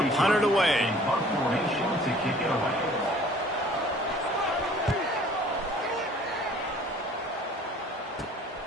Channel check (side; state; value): both; normal; correlation 0.52